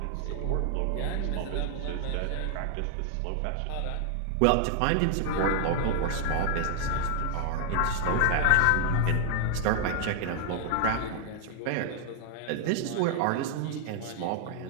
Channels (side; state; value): both; different; correlation 0.00